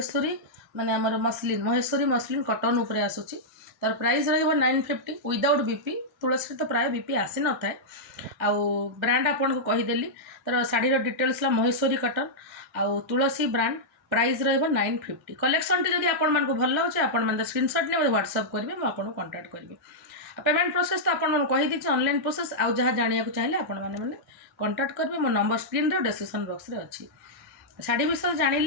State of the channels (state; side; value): normal; both; correlation -0.08